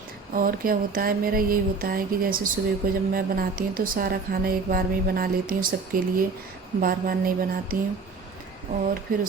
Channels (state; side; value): quieter; left; 4.4 dB